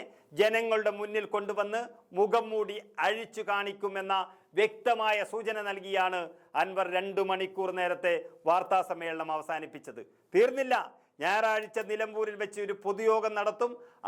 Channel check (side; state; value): both; identical; correlation 1.00